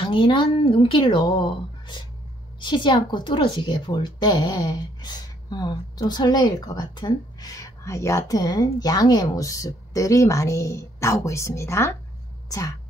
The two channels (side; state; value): both; normal; correlation 0.67